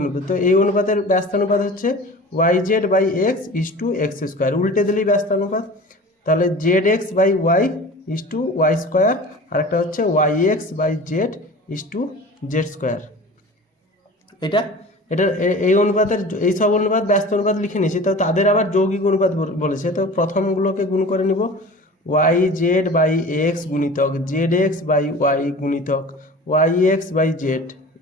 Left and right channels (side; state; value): both; normal; correlation 0.38